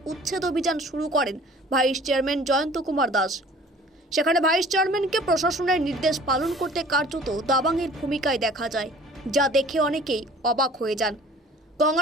উচ্ছেদ অভিযান শুরু করেন ভাইস চেয়ারম্যান জয়ন্ত কুমার দাস। সেখানে ভাইস চেয়ারম্যানকে প্রশাসনের নির্দেশ পালন করতে কার্যত দাবাংয়ের ভূমিকায় দেখা যায়, যা দেখে অনেকেই অবাক হয়ে যান।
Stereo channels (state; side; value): normal; both; correlation 0.49